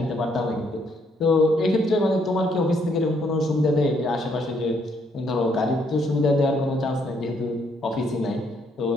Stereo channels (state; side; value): normal; both; correlation 0.71